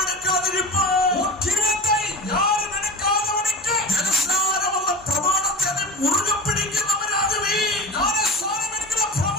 എടുക്കാതിരിപ്പ്. കിരീടത്തെ ആരും എടുക്കാത്തവനിക്ക് ജലസ്നാനമുള്ള പ്രമാണത്തെ നീ മുറുകെ പിടിക്കുന്നവരാകുവീ. ജ്ഞാനസ്നാനം എടുക്കുന്ന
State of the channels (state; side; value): normal; both; correlation 0.33